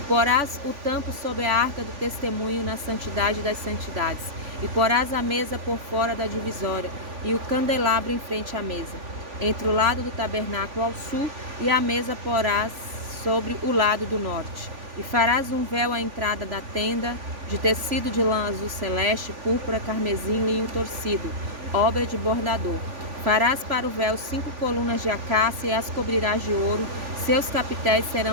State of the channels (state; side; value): late; left; 3.5 ms